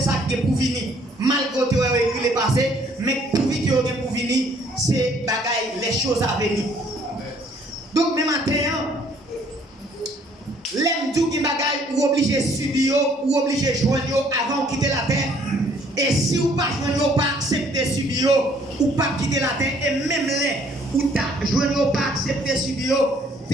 qui est pour venir. Malgré que tu as écrit le passé, mais pour venir pour venir, c'est bagaille les choses à venir. Donc même matin, l'aime tout qui bagaille ou obligé subir ou obligé joindre avant de quitter la terre. Et si vous pas joindre pas accepter subir ou pas quitter la terre et même les ou ta joindre pas accepter subir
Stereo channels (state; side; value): normal; both; correlation 0.62